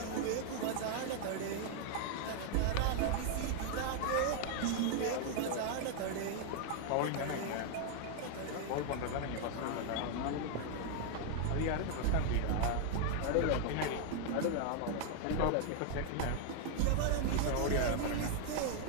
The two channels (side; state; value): both; different; correlation 0.00